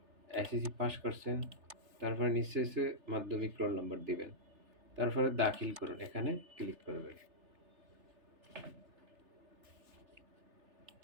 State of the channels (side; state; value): left; late; 3.3 ms